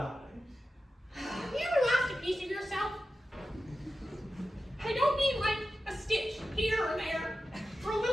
Have you ever lost a piece of yourself? I don't mean like a stitch here or there, or a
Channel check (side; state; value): both; normal; correlation 0.92